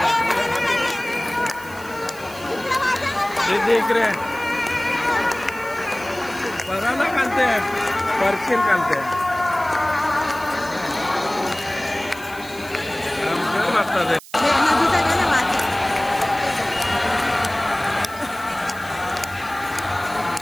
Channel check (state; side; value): noise; right; hiss, 19 dB below the sound